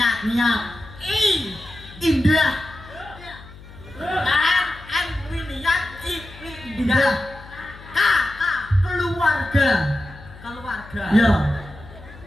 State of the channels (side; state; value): left; noise; hum, 18 dB below the sound